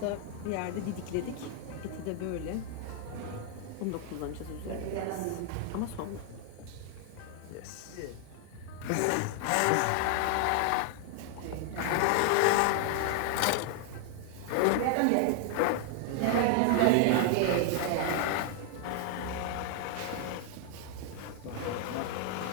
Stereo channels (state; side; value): different; both; correlation 0.00